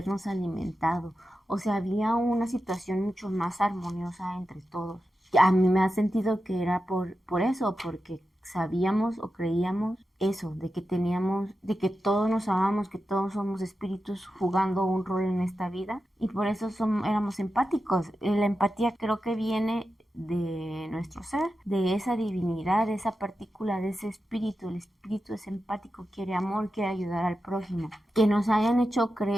alimentado. O sea, había una situación mucho más armoniosa entre todos. A mí me ha sentido que era por eso, porque sabíamos o creíamos eso, de que teníamos, de que todos nos amamos, que todos somos espíritus jugando un rol en esta vida y por eso éramos empáticos. La empatía creo que viene de nuestro ser, de esa divinidad, de esa partícula, de ese espíritu. El espíritu es empático, quiere amor, quiere ayudar al prójimo. Que nos hayan hecho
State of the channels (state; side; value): normal; both; correlation 0.91